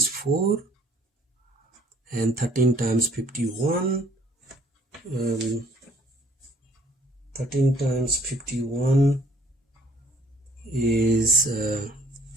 4 and 13 times 51. 13 times 51 is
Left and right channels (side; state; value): both; normal; correlation 0.59